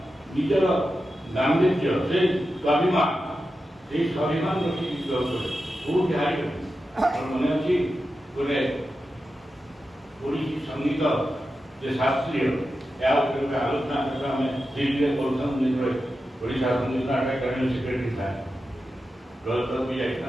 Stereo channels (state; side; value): normal; both; correlation 0.91